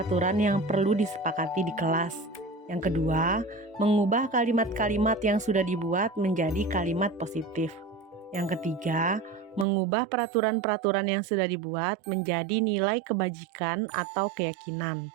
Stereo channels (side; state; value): left; drops out; at 9.7 s